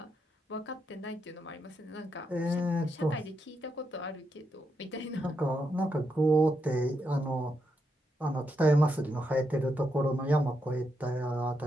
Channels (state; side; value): normal; both; correlation 0.82